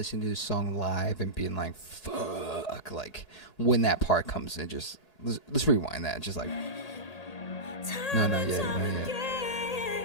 to this song live and being like, fuck, like when that part comes in. Just let's rewind that. Just like, no, not yet, not yet.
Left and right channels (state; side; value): late; right; 1.8 ms